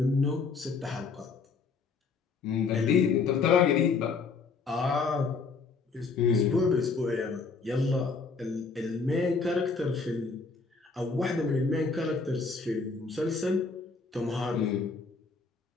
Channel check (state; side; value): quieter; right; 4.6 dB